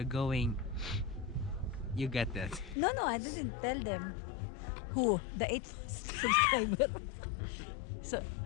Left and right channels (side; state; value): right; drops out; at 2.8 s